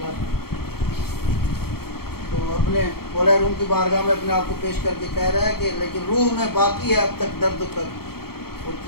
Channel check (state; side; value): late; right; 0.95 ms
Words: تو اپنے مولا روم کی بارگاہ میں اپنے آپ کو پیش کر کے کہہ رہا ہے کہ لیکن روح میں باقی ہے اب تک درد و کر. وہ